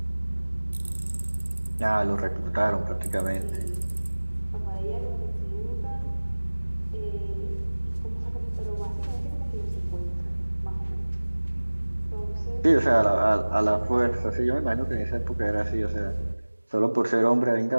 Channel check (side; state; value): both; inverted; correlation -1.00